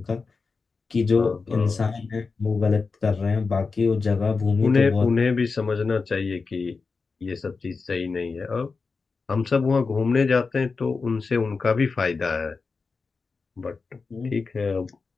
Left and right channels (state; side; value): quieter; right; 4.5 dB